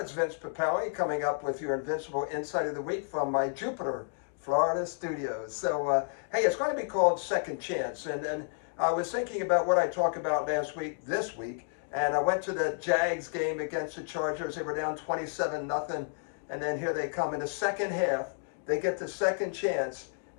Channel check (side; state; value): right; silent; digital silence